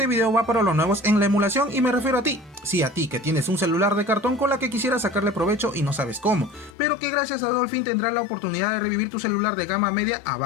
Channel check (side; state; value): right; drops out; at 6.8 s